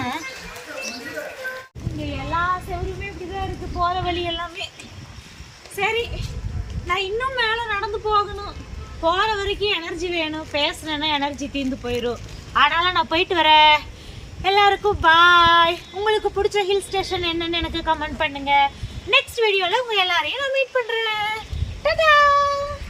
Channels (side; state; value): both; identical; correlation 1.00